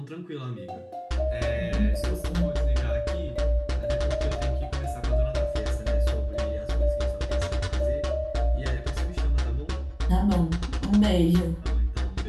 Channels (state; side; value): identical; both; correlation 1.00